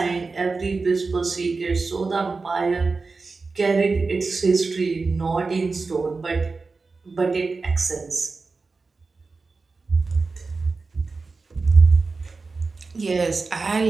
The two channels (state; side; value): quieter; left; 4.1 dB